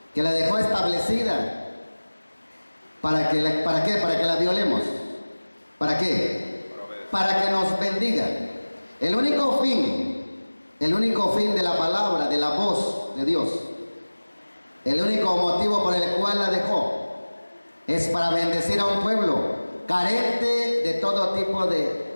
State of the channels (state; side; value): inverted; both; correlation -1.00